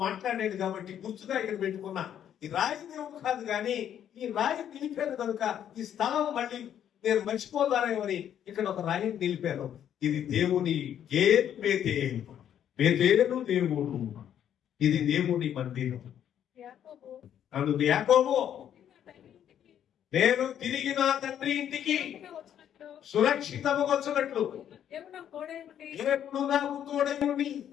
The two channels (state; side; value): quieter; right; 9.9 dB